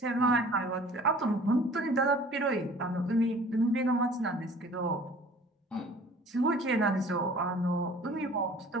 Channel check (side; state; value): both; normal; correlation 0.48